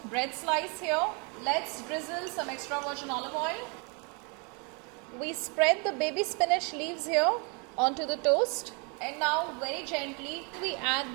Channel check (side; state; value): left; quieter; 33.6 dB